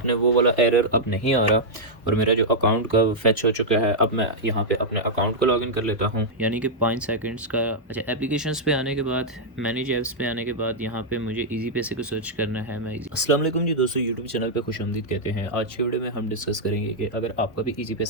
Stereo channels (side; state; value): both; normal; correlation -0.06